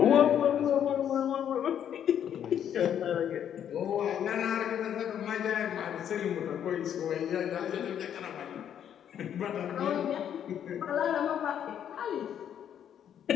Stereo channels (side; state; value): right; quieter; 9.4 dB